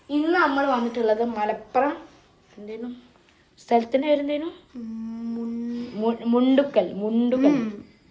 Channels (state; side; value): identical; both; correlation 1.00